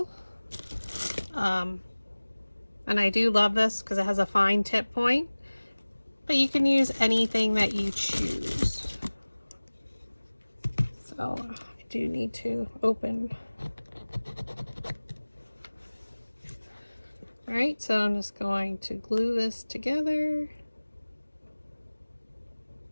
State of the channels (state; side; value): inverted; both; correlation -1.00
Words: And I do love this because it has a fine tip point, but you can use anything that you choose. So I do need to open. All right, so I'm just going to glue this together.